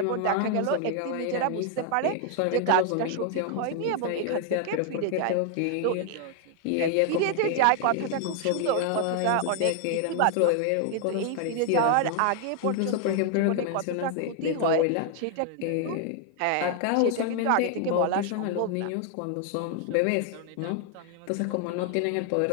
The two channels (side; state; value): both; different; correlation 0.00